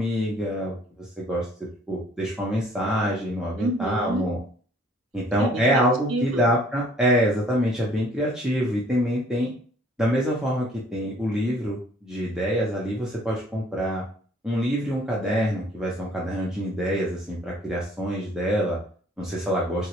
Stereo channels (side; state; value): both; normal; correlation 0.57